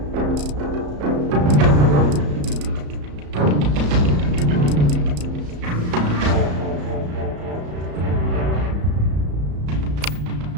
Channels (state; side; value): late; left; 34 ms